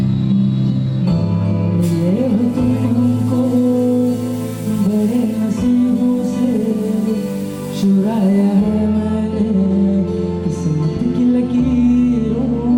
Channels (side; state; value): both; identical; correlation 1.00